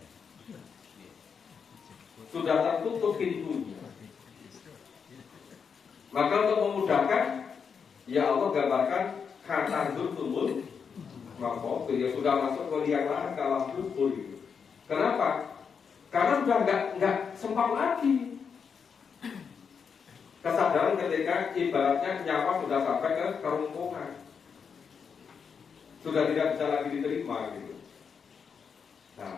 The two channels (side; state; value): right; quieter; 6.3 dB